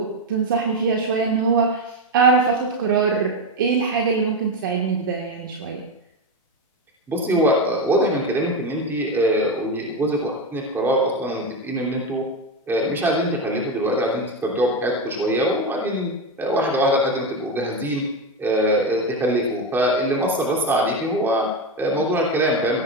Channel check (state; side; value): normal; both; correlation 0.14